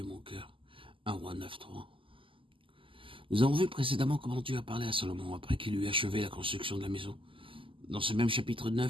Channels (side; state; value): left; late; 0.25 ms